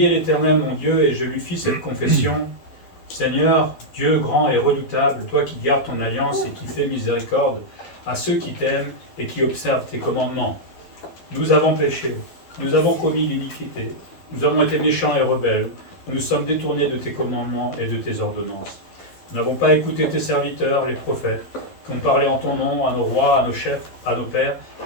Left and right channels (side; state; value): right; late; 12 ms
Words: l'Éternel mon Dieu, et je lui fis cette confession. Seigneur, Dieu grand et redoutable, toi qui gardes ton alliance et qui fais miséricorde à ceux qui t'aiment et qui observent tes commandements. Nous avons péché, nous avons commis l'iniquité, nous avons été méchants et rebelles, nous nous sommes détournés de tes commandements et de tes ordonnances. Nous n'avons pas écouté tes serviteurs, les prophètes, qui ont parlé en ton nom à nos rois, à nos chefs, à nos pères